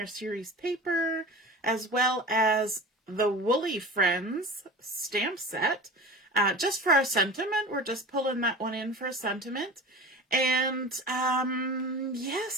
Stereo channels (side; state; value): both; normal; correlation 0.35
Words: Series paper, as well as the Woolly Friends stamp set. Just for our sentiment, we're just pulling that one in for a sentiment. And